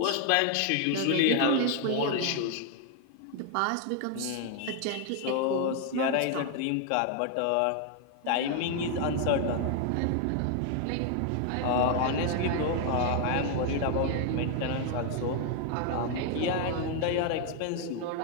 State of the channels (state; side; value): different; both; correlation 0.00